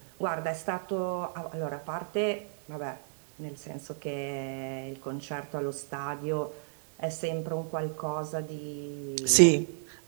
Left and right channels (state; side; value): silent; left; digital silence